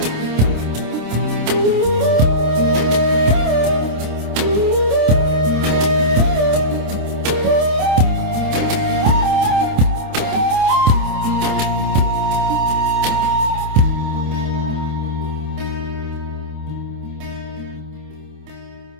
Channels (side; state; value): left; late; 27 ms